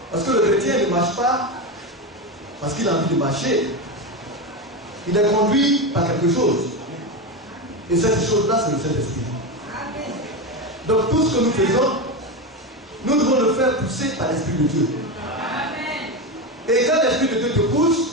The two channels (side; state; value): both; normal; correlation 0.16